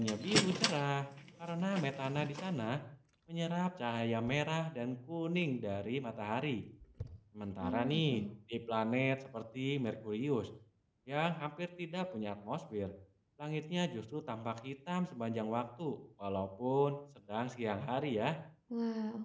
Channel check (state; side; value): identical; both; correlation 1.00